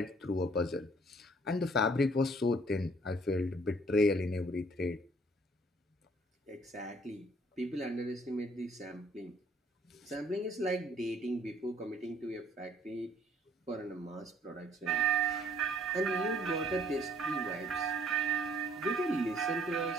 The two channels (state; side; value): normal; both; correlation 0.60